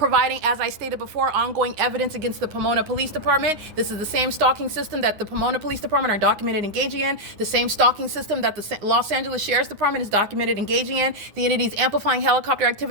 as I stated before, ongoing evidence against the Pomona Police Department. This is the same stalking system that the Pomona Police Department are documented engaging in, the same stalking system that the Los Angeles Sheriff's Department is documented engaging in. The entity is amplifying helicopter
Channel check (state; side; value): late; left; 9.7 ms